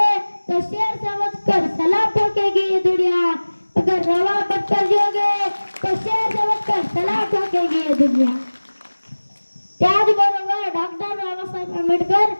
तो शेर समझ कर सलाम ठोकेगी ये दुनिया. अगर रवा बन कर जोगे तो शेर समझ कर सलाम ठोकेगी ये दुनिया. त्याचबरोबर डॉक्टर बाबासाहेब आंबेडकर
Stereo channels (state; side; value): inverted; both; correlation -1.00